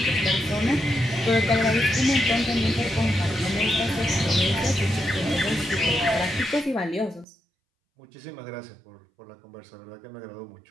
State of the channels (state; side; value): drops out; left; at 7.2 s